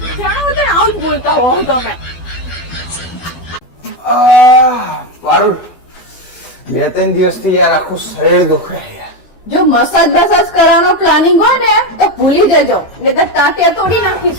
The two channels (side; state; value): right; late; 12 ms